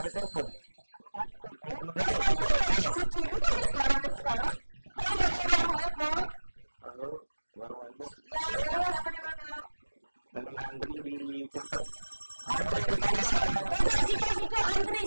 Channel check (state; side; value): inverted; both; correlation -1.00